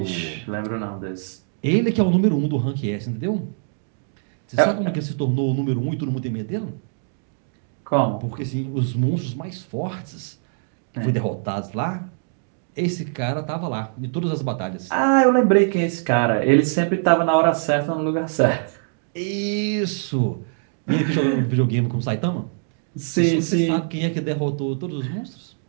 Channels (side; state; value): left; silent; digital silence